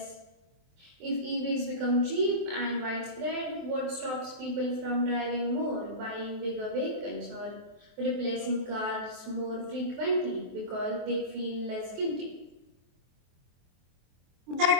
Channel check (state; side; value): late; left; 23 ms